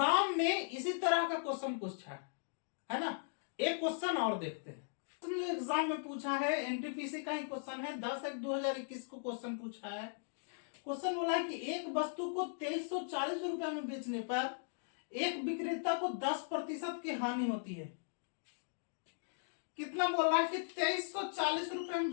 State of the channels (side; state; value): right; silent; digital silence